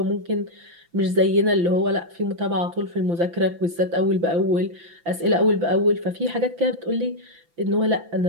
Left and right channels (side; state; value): left; late; 5.9 ms